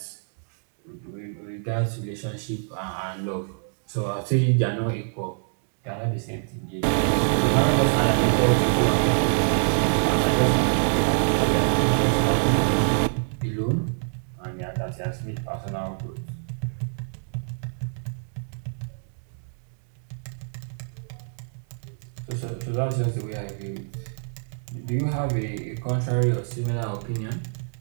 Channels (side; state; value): left; silent; digital silence